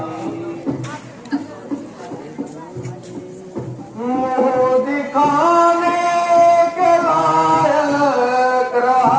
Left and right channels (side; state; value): both; identical; correlation 1.00